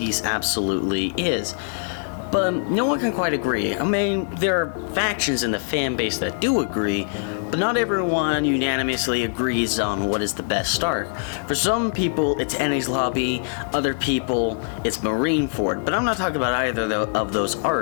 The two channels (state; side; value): silent; right; 63 dB below the other